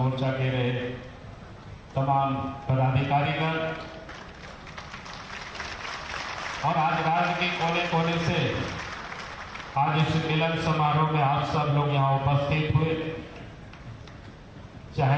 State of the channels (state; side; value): identical; both; correlation 1.00